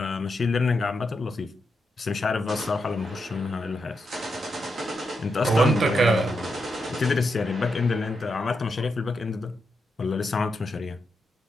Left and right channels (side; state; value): both; normal; correlation 0.84